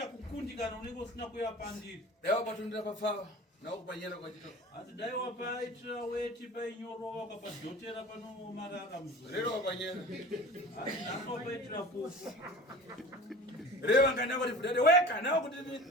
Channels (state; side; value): normal; both; correlation 0.39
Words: kukundikana unenge usina kuyapandira. Daiwa patundira pafawa. Nawo kupanyera kwa chito. Hanzi dai wapaitira weti painyorova ukapadhotera pano marara muzoro. Rero wapanyera. Hanzi naso wapaitira pofu. Rewa ngana kuti fudade weka nawo kuti